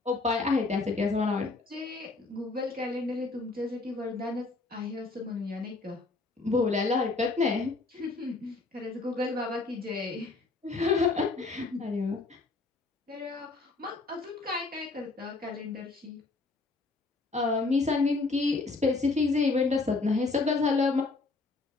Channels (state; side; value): quieter; right; 3.7 dB